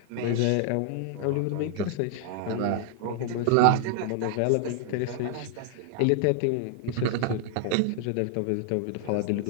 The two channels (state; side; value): different; both; correlation 0.00